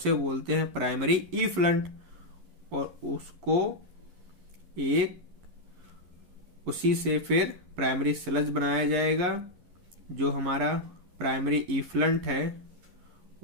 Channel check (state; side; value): late; left; 11 ms